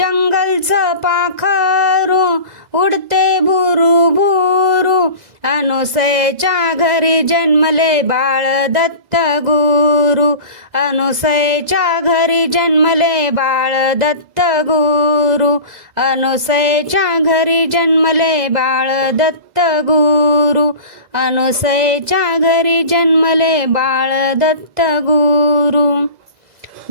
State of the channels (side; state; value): left; late; 2.0 ms